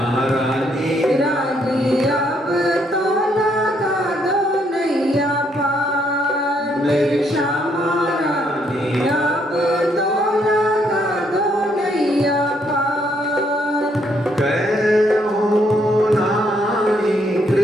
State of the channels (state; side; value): normal; both; correlation 0.71